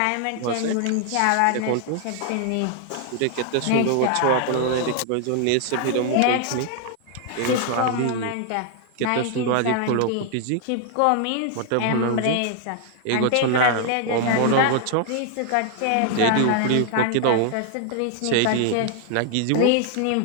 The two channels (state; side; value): different; both; correlation 0.00